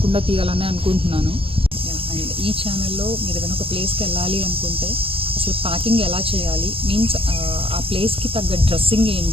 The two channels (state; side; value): late; left; 0.27 ms